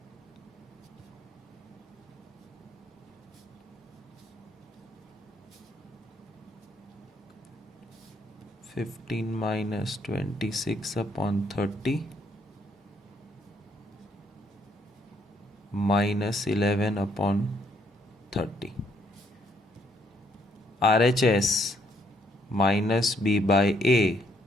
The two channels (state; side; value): normal; both; correlation 0.70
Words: (15 minus 26 upon 30 minus 11 upon 30). RHS minus B by A